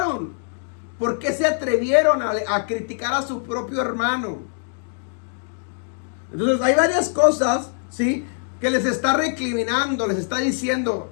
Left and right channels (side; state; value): right; silent; digital silence